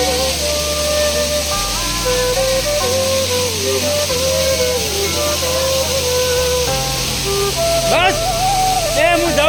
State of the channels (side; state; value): both; identical; correlation 1.00